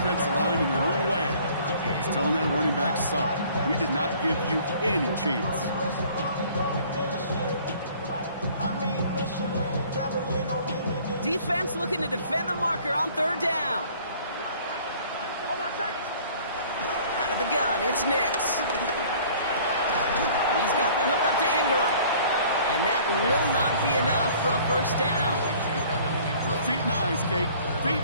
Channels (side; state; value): both; inverted; correlation -0.53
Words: line in their own way is telling that running back, sorry, we did not give you any chance. Defense looking to defend the marker on 3rd down. Out of the gun, it's Nix. He's got the hook up to Ingram. And that will not be enough for a first down. Feet and eyes, Kate. Feet